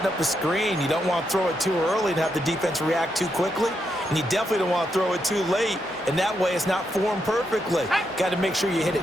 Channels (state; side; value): normal; both; correlation 0.81